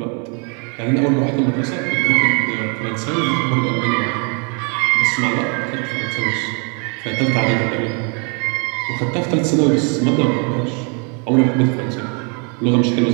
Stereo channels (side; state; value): left; quieter; 36.2 dB